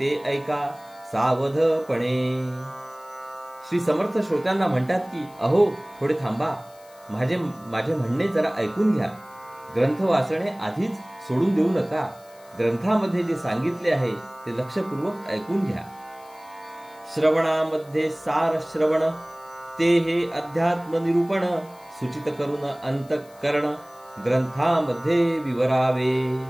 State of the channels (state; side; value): noise; left; hiss, 27 dB below the sound